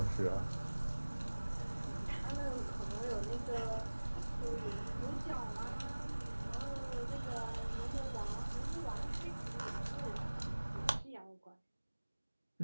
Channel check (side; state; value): both; inverted; correlation -1.00